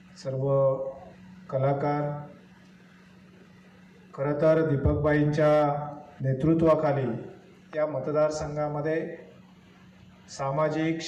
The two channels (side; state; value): both; identical; correlation 1.00